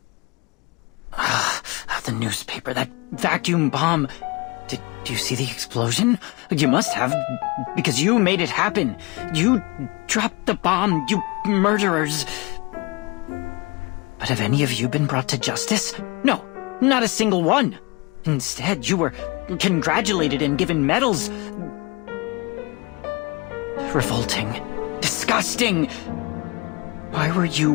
The newspaper, that vacuum bomb. Did you see the explosion? You must have, because you made it happen. You dropped the bomb, you murderers. But have any of you been brought to justice? No, not a single one. Instead, you were congratulated and given medals. Revolting. Disgusting. Why were you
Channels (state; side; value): quieter; right; 26.5 dB